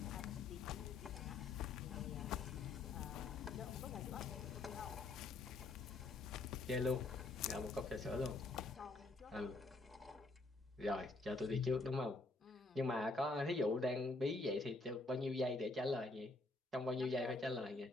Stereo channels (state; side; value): quieter; right; 3.2 dB